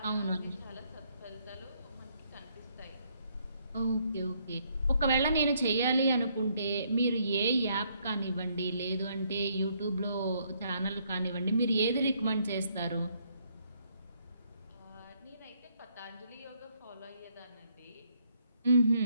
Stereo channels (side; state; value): both; inverted; correlation -0.70